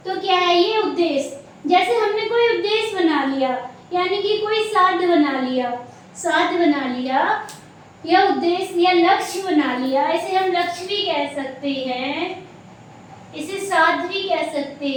तो क्या है ये उद्देश्य? जैसे हमने कोई उद्देश्य बना लिया, यानी कि कोई साध्य बना लिया या उद्देश्य या लक्ष्य बना लिया। इसे हम लक्ष्य भी कह सकते हैं, इसे साध्य भी कह सकते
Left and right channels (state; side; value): identical; both; correlation 1.00